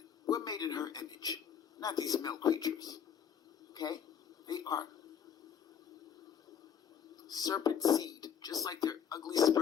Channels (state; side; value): quieter; right; 8.1 dB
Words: We're made in her image. Not these male creatures. Okay? They are serpent seed, just like their ugly